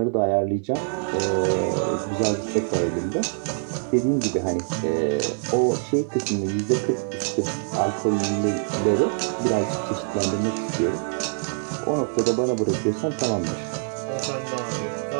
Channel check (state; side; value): silent; left; digital silence